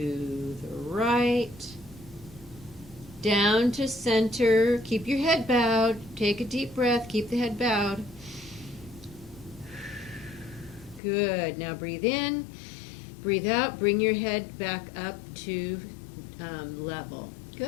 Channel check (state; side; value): drops out; right; at 11.0 s